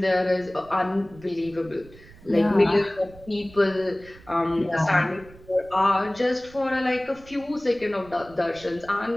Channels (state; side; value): noise; right; rumble, 22 dB below the sound